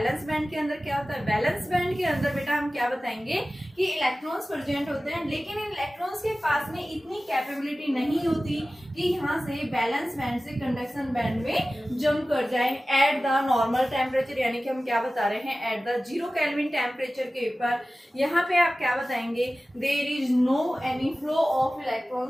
बैंड के अंदर क्या होता है। बैलेंस बैंड के अंदर बेटा हम क्या बताएंगे कि इलेक्ट्रॉन्स प्रेजेंट होते हैं, लेकिन इन इलेक्ट्रॉन्स के पास में इतनी कैपेबिलिटी नहीं होती कि यहाँ से बैलेंस बैंड से कंडक्शन बैंड में जंप कर जाए एट द नॉर्मल टेम्परेचर। यानी कि हम क्या बता रहे हैं, एट द 0 केल्विन टेम्परेचर के ऊपर यहाँ पे आप क्या बताएंगे, there is no any flow of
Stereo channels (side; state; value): both; normal; correlation 0.96